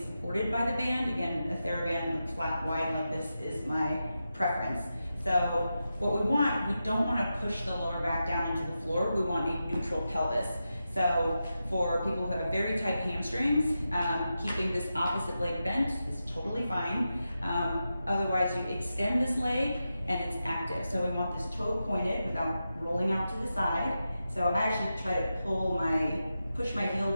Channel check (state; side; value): inverted; both; correlation -0.90